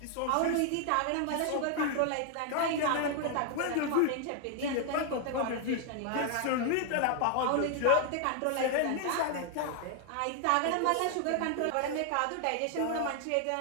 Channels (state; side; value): different; both; correlation 0.00